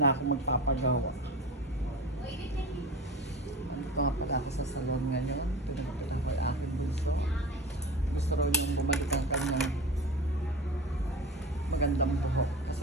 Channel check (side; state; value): both; normal; correlation 0.31